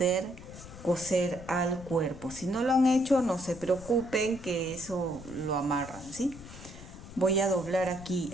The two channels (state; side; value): noise; left; rumble, 15 dB below the sound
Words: coser al cuerpo. Si no lo han hecho, no se preocupen que eso lo amarran, ¿sí? Voy a doblar aquí